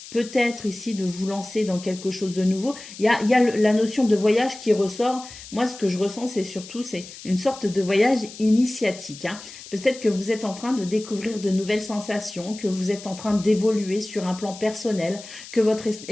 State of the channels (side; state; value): left; noise; hiss, 15 dB below the sound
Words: peut-être ici de vous lancer dans quelque chose de nouveau. Il y a la notion de voyage qui ressort. Moi, ce que je ressens, c'est une sorte de voyage initiatique, hein. Peut-être que vous êtes en train de découvrir de nouvelles sensations, que vous êtes en train d'évoluer sur un plan personnel, que votre